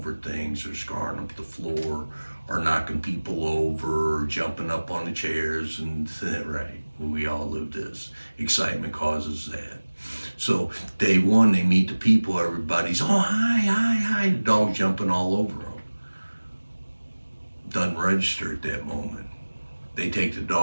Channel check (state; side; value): inverted; both; correlation -1.00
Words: things or scarring up the floor or knocking people over or jumping up on the chairs. And right, we all live this. Excitement causes that. So day one, they meet the people, everybody's, oh, hi, the dog's jumping all over them. Doesn't register at that moment. They take the